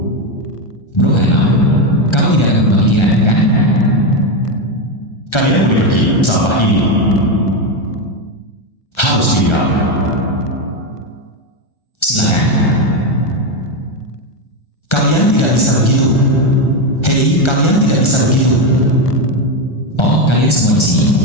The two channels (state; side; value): late; right; 1.3 ms